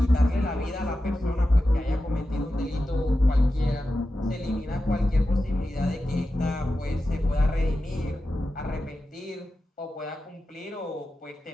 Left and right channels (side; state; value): both; normal; correlation 0.92